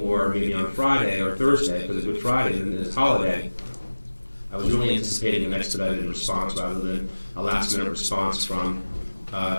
maybe on Friday or Thursday, because it's Good Friday and it's holiday. I was really anticipating an expedited response rather than a last-minute response from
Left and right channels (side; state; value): both; inverted; correlation -1.00